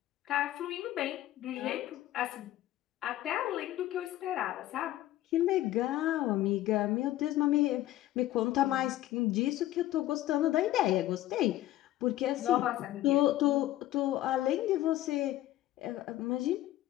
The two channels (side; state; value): right; quieter; 14.7 dB